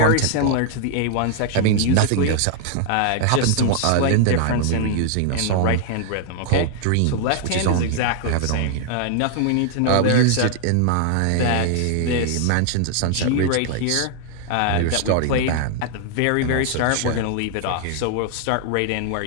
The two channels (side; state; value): both; different; correlation 0.00